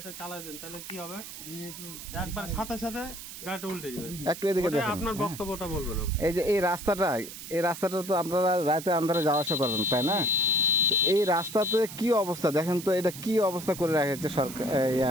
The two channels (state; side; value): noise; right; hiss, 12 dB below the sound